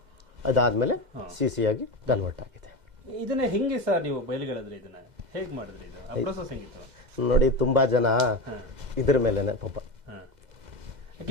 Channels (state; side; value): late; left; 2.0 ms